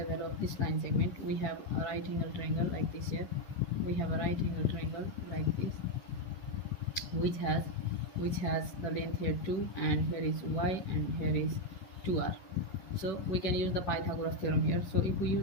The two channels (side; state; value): right; late; 11 ms